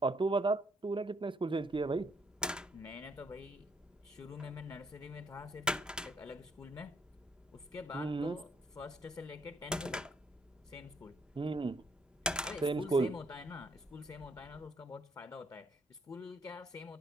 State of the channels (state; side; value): normal; both; correlation 0.70